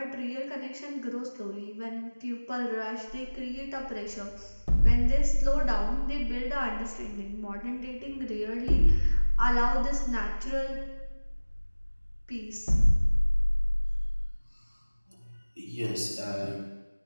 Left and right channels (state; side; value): inverted; both; correlation -1.00